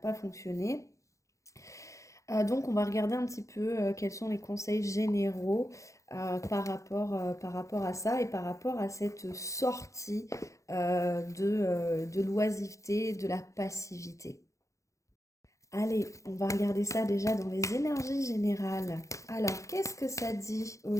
fonctionné. Donc, on va regarder un petit peu quels sont les conseils généraux par rapport à ça et par rapport à cette sortie de l'oisiveté, de la passivité. Allez, on va regarder ça déjà dans les énergies générales. Alors, qu'est-ce que ça dit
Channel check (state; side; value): late; right; 0.15 ms